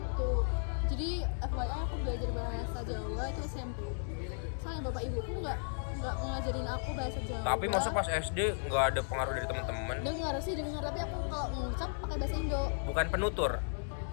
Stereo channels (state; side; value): silent; right; digital silence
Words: jadi FYI aku belajar bahasa Jawa itu SMP. Soalnya bapak ibuku nggak ngajarin aku bahasa Jawa. Tapi masa pas SD nggak ada pengaruh dari teman-teman? Dengar, tapi aku kalau ngucap pakai bahasa Indo. Bukan penutur.